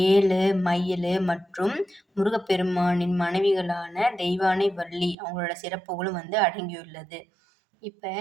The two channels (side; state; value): left; drops out; at 5.2 s